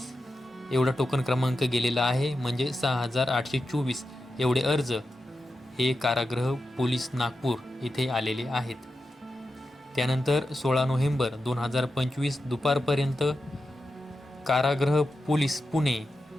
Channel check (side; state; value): both; normal; correlation 0.90